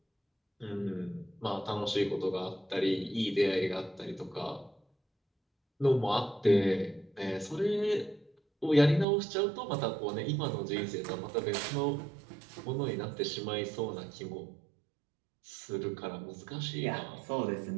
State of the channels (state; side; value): drops out; left; at 9.1 s